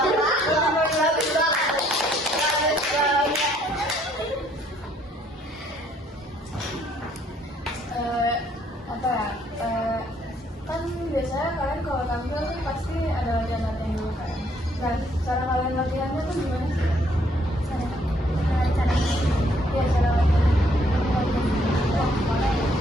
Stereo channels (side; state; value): both; normal; correlation 0.66